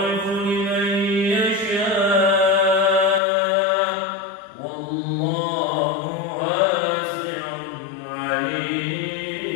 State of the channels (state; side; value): drops out; right; at 3.2 s